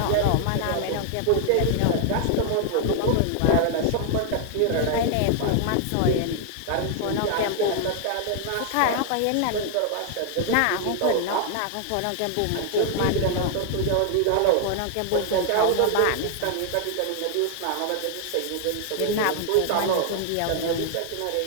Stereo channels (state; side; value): different; both; correlation 0.00